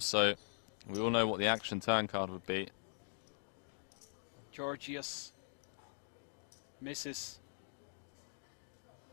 so. We all know what the action turn card would be. Georgios misses.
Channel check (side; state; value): right; silent; digital silence